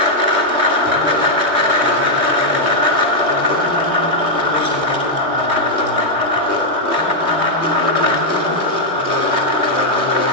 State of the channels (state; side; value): late; left; 3.2 ms